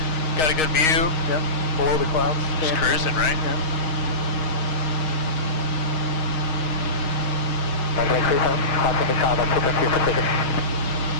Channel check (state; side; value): late; right; 6.4 ms